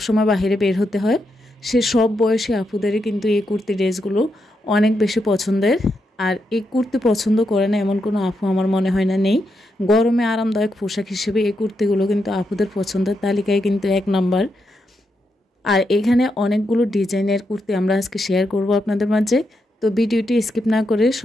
বাইরে বের হতে হয়, সে সব বয়সী আপুদেরই কিন্তু এই কুর্তি ড্রেসগুলো অনেক বেশি পছন্দের। আর এই কুর্তি পছন্দ করে না এমন কোনো আপু আমার মনে হয় না নেই। গরমে আরামদায়ক পোশাক হিসেবে এই কুর্তিগুলো কিন্তু আপুদের পছন্দের তালিকায় কিন্তু 1 নাম্বার। আর এখানে অনেকগুলো ডিজাইনের কুর্তি আমরা আজকে শেয়ার করব আপনাদের মাঝে। তো ভিডিওটি স্কিপ না করে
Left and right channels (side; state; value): both; normal; correlation 0.83